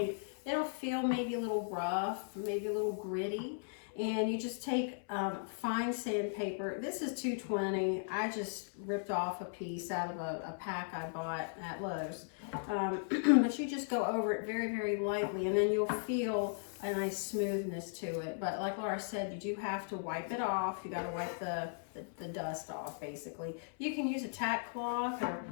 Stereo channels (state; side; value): silent; right; 53 dB below the other